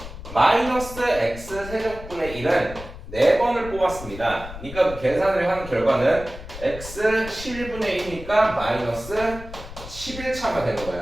마이너스 x 세제곱분의 1은 4번을 뽑았습니다. 그러니까 그 계산을 한 결과는 x 11분의 1이니까 마이너스 11차가 되는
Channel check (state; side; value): noise; left; rumble, 13 dB below the sound